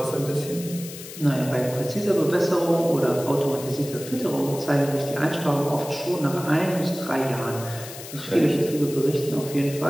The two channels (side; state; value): left; noise; hiss, 13 dB below the sound